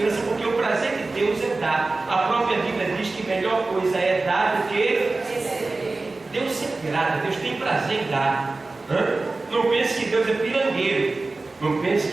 porque o prazer de Deus é dar. A própria Bíblia diz que melhor coisa é dar do que receber. Deus se agrada, Deus tem prazer em dar. Não pense que Deus é pirangueiro. Não pense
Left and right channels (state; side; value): quieter; left; 3.4 dB